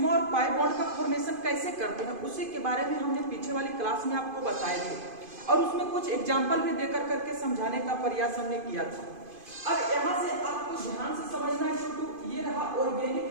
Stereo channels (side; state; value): left; late; 2.5 ms